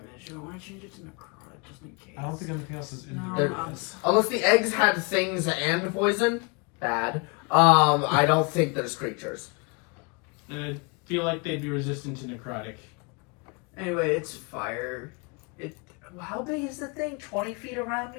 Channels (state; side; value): quieter; right; 31.5 dB